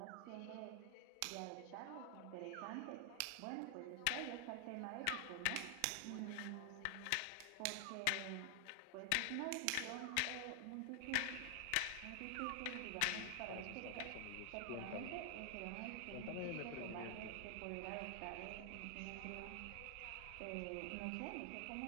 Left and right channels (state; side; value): different; both; correlation 0.00